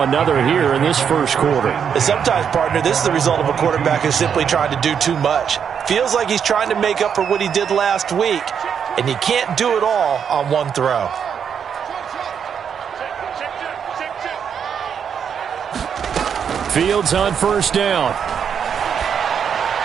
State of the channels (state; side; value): quieter; left; 7.5 dB